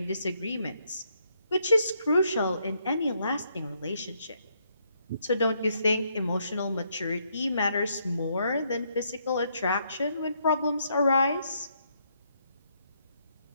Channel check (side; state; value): both; inverted; correlation -0.74